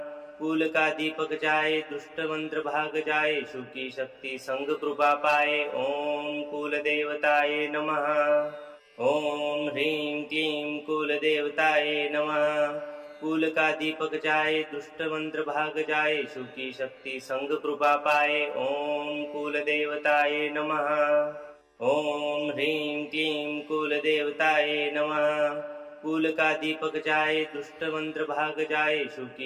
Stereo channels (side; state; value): both; identical; correlation 1.00